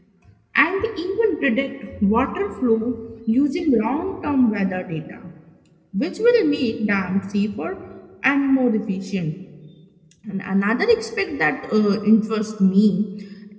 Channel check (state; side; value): identical; both; correlation 1.00